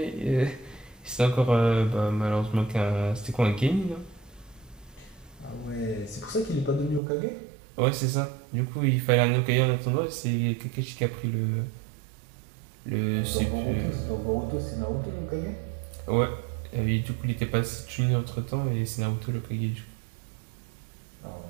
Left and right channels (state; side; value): drops out; left; at 7.0 s